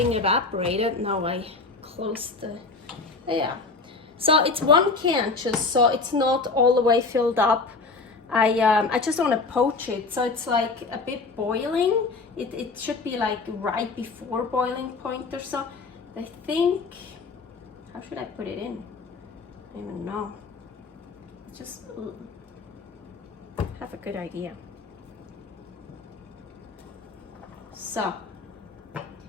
evaporated. Now I closed the, yeah. So it's 1 can just, so it's not all the way filled up. I just want to poach it, so it's like a bit boiling. It should be like right before boiling point or so. I think, how should I put it in? I don't even know. Just have a good idea. So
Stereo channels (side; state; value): right; quieter; 3.9 dB